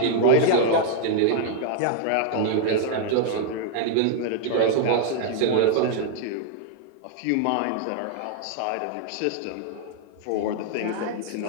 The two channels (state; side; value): different; both; correlation 0.00